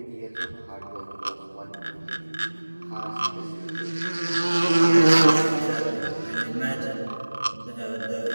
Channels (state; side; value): inverted; both; correlation -1.00